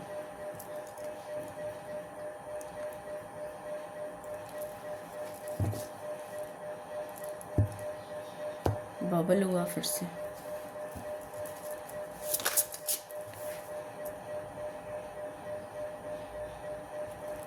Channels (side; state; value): both; identical; correlation 1.00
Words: bubble हुआ फिर से।